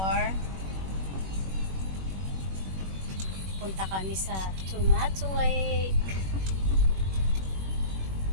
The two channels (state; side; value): late; left; 21 ms